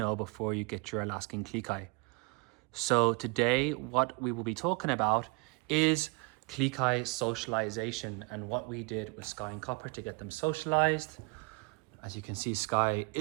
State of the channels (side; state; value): left; quieter; 30.1 dB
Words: before you get your Alaskan Klee. So today what we will be talking about is Klee socialization and what we did with Sky and Copper to get them socialized. As you can see, Sky